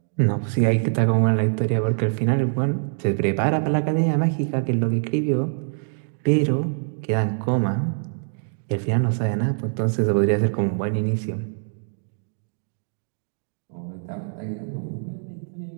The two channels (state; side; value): silent; left; digital silence